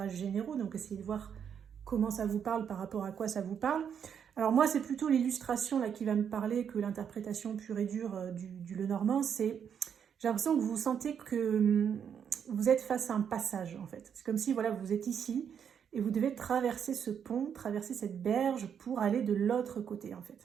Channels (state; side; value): quieter; left; 7.9 dB